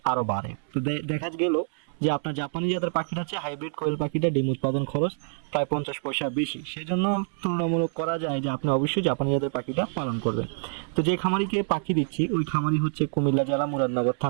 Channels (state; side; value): silent; left; 60 dB below the other